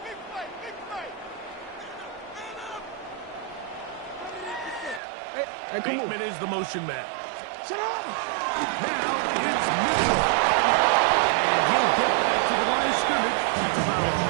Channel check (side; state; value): left; drops out; at 5.0 s